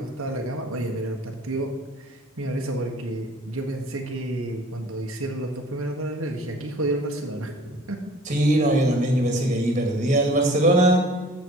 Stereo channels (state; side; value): normal; both; correlation 0.49